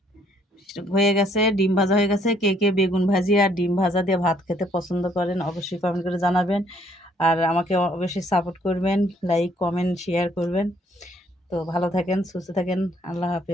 হয়ে গেছে, ডিম ভাজা হয়ে গেছে। কে কে বেগুন ভাজি আর ডিম ভাজা দিয়ে ভাত খেতে পছন্দ করেন অবশ্যই কমেন্ট করে জানাবেন। আর আমাকে অবশ্যই সাপোর্ট করবেন, লাইক কমেন্ট শেয়ার করবেন। তো ভালো থাকেন, সুস্থ থাকেন, আল্লাহ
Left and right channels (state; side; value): normal; both; correlation 0.66